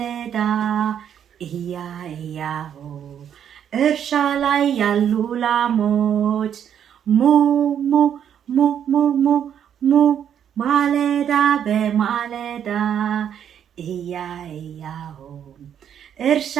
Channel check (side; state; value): left; quieter; 9.0 dB